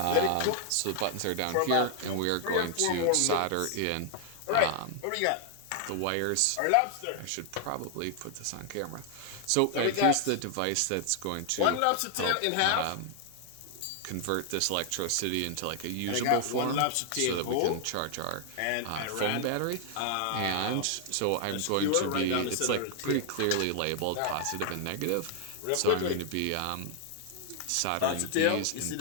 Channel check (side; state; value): both; different; correlation 0.00